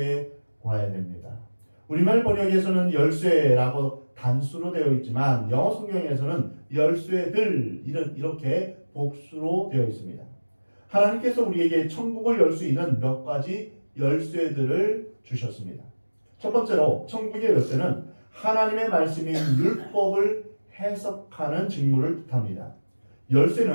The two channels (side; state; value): both; inverted; correlation -1.00